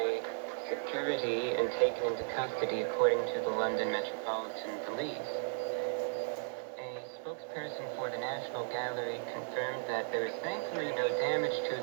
security and taken into custody according to the London Metropolitan Police. A spokesperson for the National Gallery confirmed that there is thankfully no damage to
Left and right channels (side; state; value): left; silent; digital silence